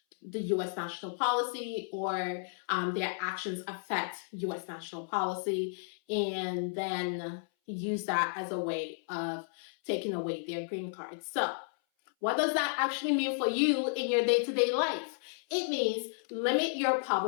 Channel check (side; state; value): right; silent; 56 dB below the other